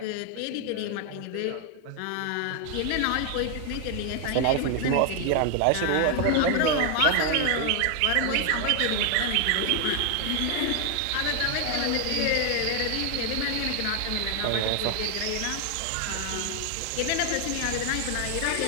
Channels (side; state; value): both; different; correlation 0.00